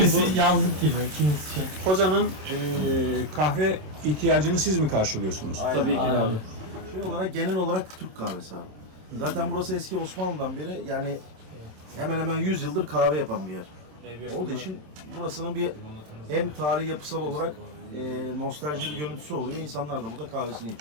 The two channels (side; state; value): left; late; 27 ms